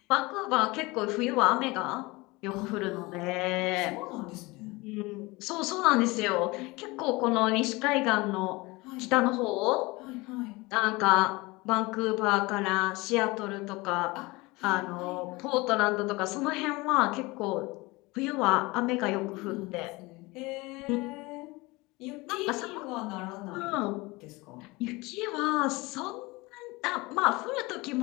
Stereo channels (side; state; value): right; quieter; 23.2 dB